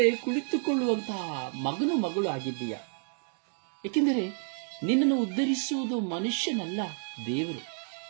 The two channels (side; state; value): left; silent; 55 dB below the other